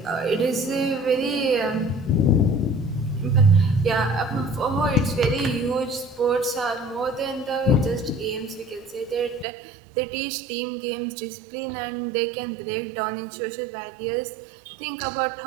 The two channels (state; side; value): drops out; left; at 9.5 s